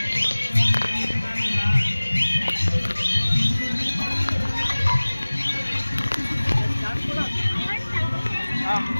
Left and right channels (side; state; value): both; inverted; correlation -1.00